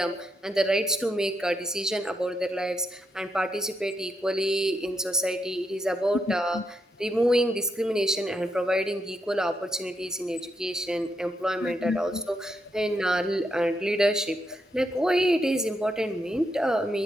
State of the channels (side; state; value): both; normal; correlation 0.81